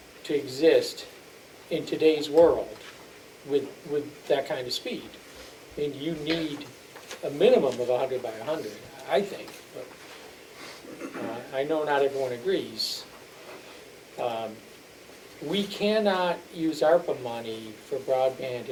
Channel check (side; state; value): both; identical; correlation 1.00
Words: to exist in today's world with that kind of speed. I mean, you need a minimum of 100 by 100, I think, but I know not everyone agrees. We cannot use ARPA money for broadband